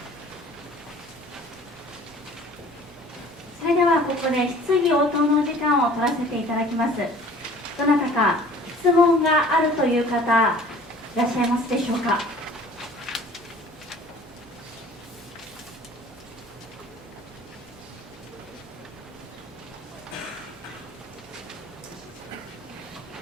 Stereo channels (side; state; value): both; normal; correlation 0.49